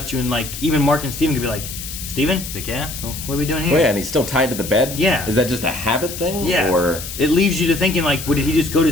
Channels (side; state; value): left; noise; hiss, 9 dB below the sound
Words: you in like, even Mark and Steven could be like, Steven? He's like, yeah? Well, what are we doing here? Oh yeah, and he's still tied to the bed? Yeah. Is that just a habit thing? Yeah. Or It leaves you to thinking like, did he just go to